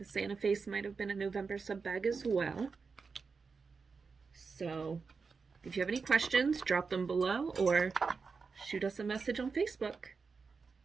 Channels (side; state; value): left; quieter; 5.0 dB